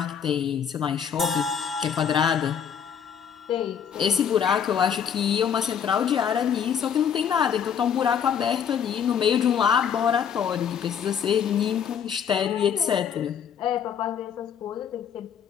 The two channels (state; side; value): quieter; right; 8.0 dB